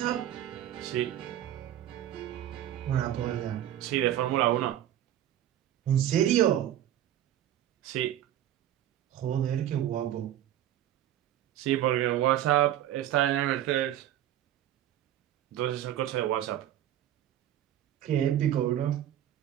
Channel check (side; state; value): left; quieter; 11.9 dB